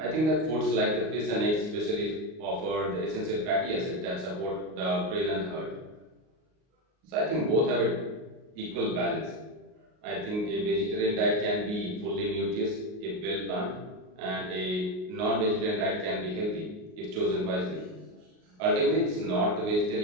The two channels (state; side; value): late; left; 38 ms